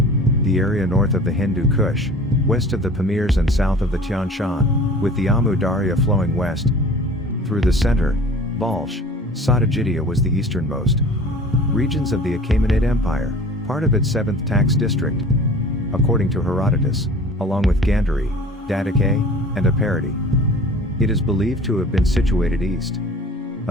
the area north of the Hindu Kush, west of the Pamirs and south of the Tian Shan, with the Amu Darya flowing west through the center. Balch, Satajidia was the easternmost regions of the Achaemenid Empire, part of its 7th tax district, according to Herodotus, along with Gandhari, Dadake, and Aparati. It is believed to have been situated east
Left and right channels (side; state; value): both; normal; correlation 0.44